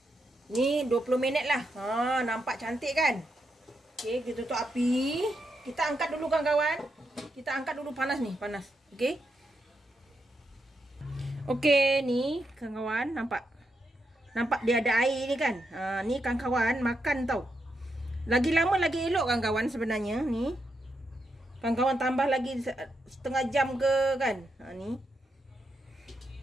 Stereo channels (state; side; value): normal; both; correlation 0.83